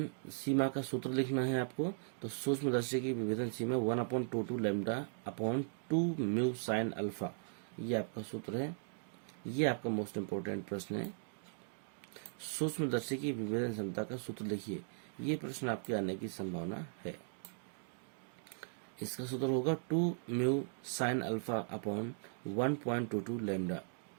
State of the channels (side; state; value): left; silent; digital silence